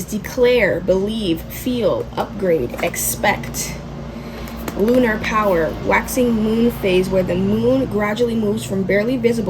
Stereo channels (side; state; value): both; identical; correlation 1.00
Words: declare, believe, feel, upgrade, expect. Lunar power, waxing moon phase, where the moon gradually moves from barely